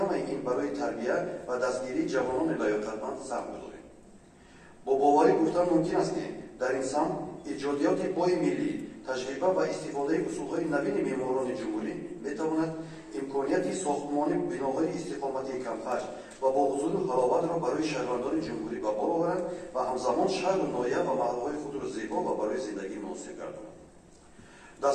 این برای تربیت و دستگیری جوانان لیاقتمند سهم بذاریم. با باوری گفتن ممکن است که در این سمت ایجادیات پای ملی، تجربه و استفاده اصولهای نوین معماران جمهوری میتواند امکانیت ساختمان بناهای استقامتی کم‌خرج و با حضور حلاوت را برای شهروندان جمهوری به بار آورد و همزمان شهر و ناحیه و محله‌های خود را زیبا و برای زندگی مناسب گرداند.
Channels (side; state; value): both; identical; correlation 1.00